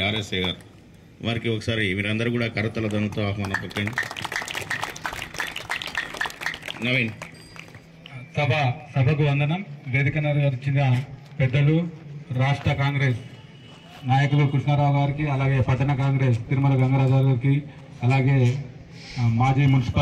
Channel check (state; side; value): identical; both; correlation 1.00